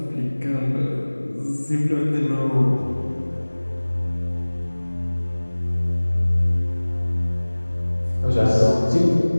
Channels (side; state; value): both; inverted; correlation -1.00